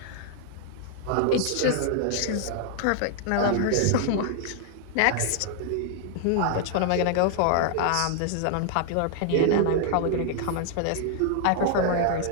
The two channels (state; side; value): different; both; correlation -0.01